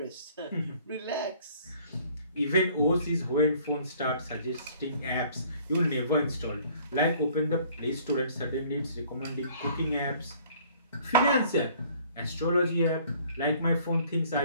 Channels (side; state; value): both; inverted; correlation -0.56